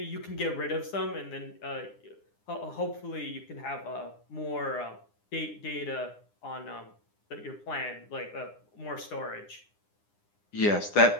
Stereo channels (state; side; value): late; right; 9.8 ms